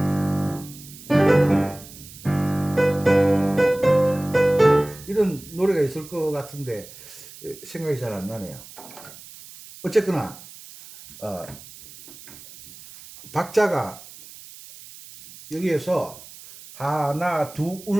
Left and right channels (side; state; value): right; noise; hiss, 18 dB below the sound